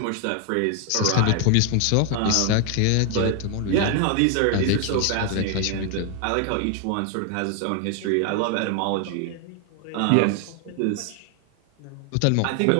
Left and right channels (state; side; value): different; both; correlation 0.00